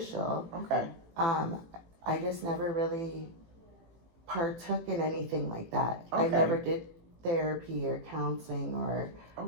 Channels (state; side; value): late; left; 18 ms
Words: Okay. I just never really partook in anything like that. I Okay. never did therapy or counseling, or